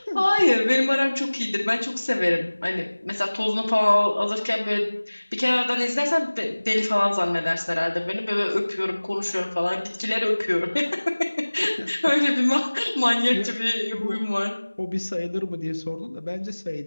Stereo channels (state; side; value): inverted; both; correlation -1.00